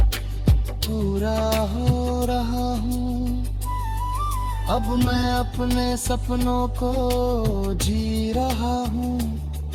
पूरा हो रहा हूँ। अब मैं अपने सपनों को जी रहा हूँ,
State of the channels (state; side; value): identical; both; correlation 1.00